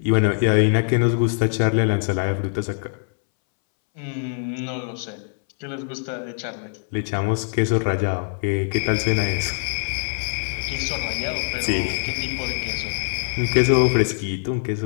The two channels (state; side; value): silent; right; 63 dB below the other